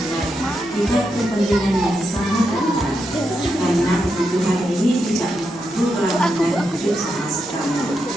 tingkat kepentingan yang sangat rendah karena kebutuhan ini tidak mengganggu kelangsungan hidup sama sekali.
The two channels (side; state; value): both; normal; correlation 0.84